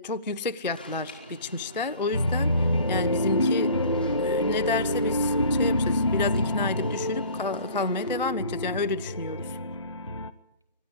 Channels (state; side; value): inverted; both; correlation -0.46